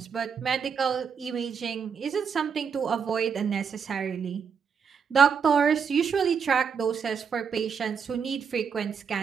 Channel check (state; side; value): quieter; left; 6.6 dB